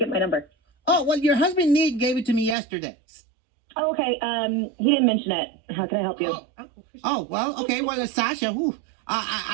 my number? Oh, well, your husband, Nick, gave it to me yesterday. Oh, okay. He didn't mention it. How can I help you? Oh, well, okay. Well, Sasha,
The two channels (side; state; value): left; drops out; at 2.6 s